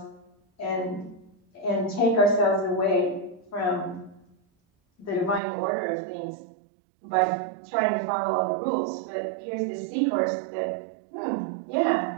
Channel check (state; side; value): drops out; left; at 5.4 s